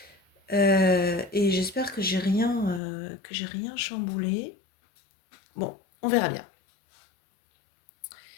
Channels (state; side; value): drops out; right; at 2.8 s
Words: et j'espère que j'ai rien chamboulé. Bon, on verra bien.